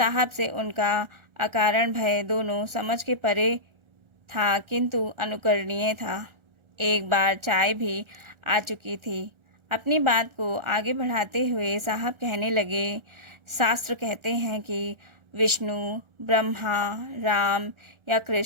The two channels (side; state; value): left; late; 1.4 ms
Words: से उनका अकारण भय दोनों समझ के परे था, किंतु अनुकरणीय था। एक बार चाय भी आ चुकी थी। अपनी बात को आगे बढ़ाते हुए साहब कहने लगे, शास्त्र कहते हैं कि विष्णु, ब्रह्मा, राम या